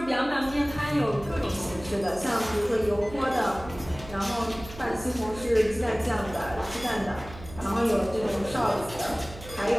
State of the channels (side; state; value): right; noise; hum, 15 dB below the sound